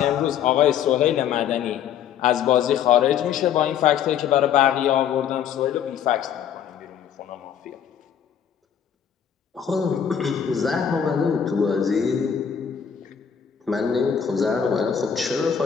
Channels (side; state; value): right; quieter; 8.4 dB